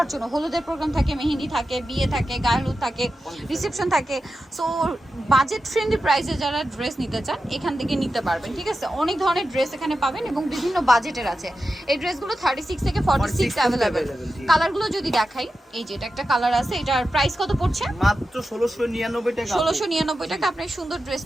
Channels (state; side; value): normal; both; correlation 0.91